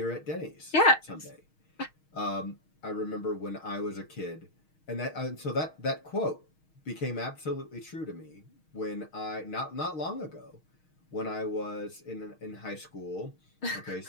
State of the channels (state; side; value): late; right; 6.4 ms